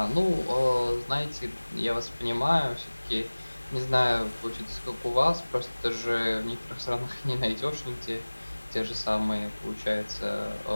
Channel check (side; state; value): both; inverted; correlation -1.00